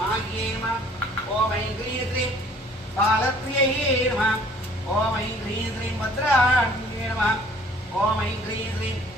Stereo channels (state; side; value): normal; both; correlation 0.55